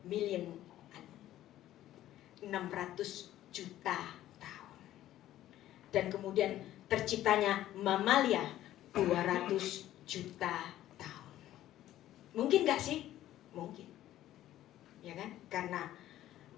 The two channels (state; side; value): quieter; right; 13.4 dB